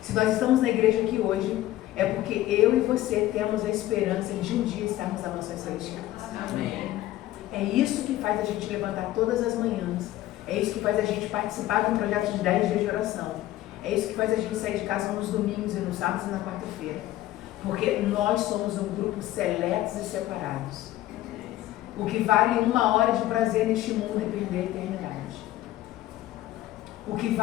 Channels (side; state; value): right; quieter; 15.1 dB